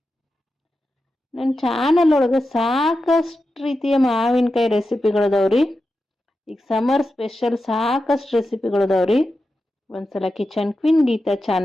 ನನ್ನ ಚಾನಲ್ ಒಳಗೆ ಸಾಕಷ್ಟು ರೀತಿಯ ಮಾವಿನಕಾಯಿ ರೆಸಿಪಿಗಳದಾವ್ರಿ. ಈಗ ಸಮರ್ ಸ್ಪೆಷಲ್ ಸಾಕಷ್ಟು ರೆಸಿಪಿಗಳದಾವ್ರಿ. ಒಂದ್ಸಲ ಕಿಚನ್ ಕ್ವೀನ್ ಗೀತಾ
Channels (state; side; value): normal; both; correlation 0.90